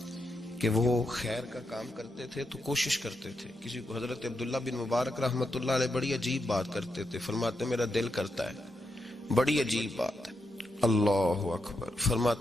کہ وہ خیر کا کام کرتے تھے تو کوشش کرتے تھے. کسی کو حضرت عبداللہ بن مبارک رحمۃ اللہ علیہ بڑی عجیب بات کرتے تھے، فرماتے میرا دل کرتا ہے، بڑی عجیب بات ہے، اللہ اکبر،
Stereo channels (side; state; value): both; normal; correlation 0.84